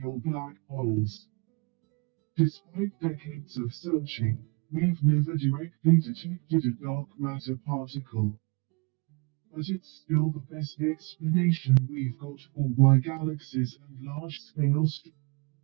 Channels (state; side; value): quieter; left; 30.8 dB